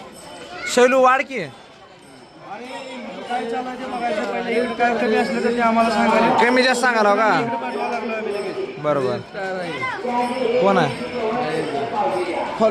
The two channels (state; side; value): identical; both; correlation 1.00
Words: शैलू वाढ की. काय चालायचं बघायचं पहिले. इकडे काय कमी असलं तर ते आम्हाला सांगायला. कमी जास्त सांगाल हो का? बरोबर. कोण आहे?